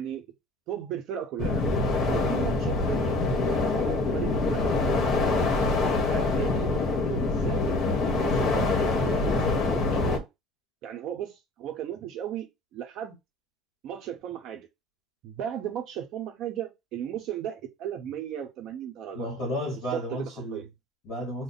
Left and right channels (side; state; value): both; normal; correlation 0.46